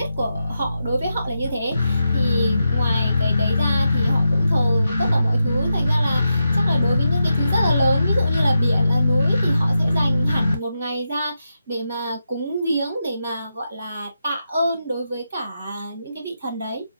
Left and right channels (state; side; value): inverted; both; correlation -0.87